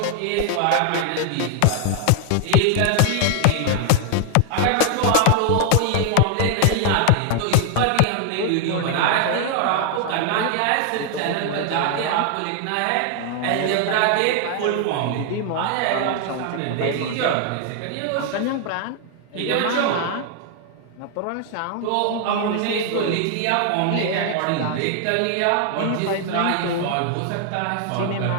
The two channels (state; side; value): different; both; correlation 0.00